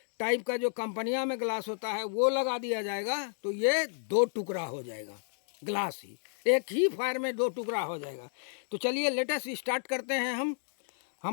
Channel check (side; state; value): right; silent; digital silence